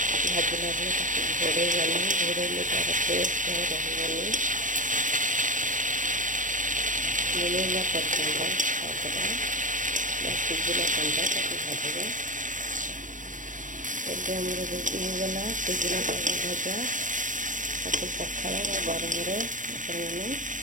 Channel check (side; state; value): left; late; 0.37 ms